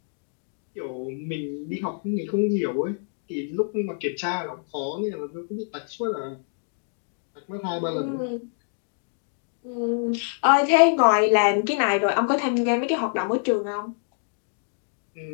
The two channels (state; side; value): silent; right; digital silence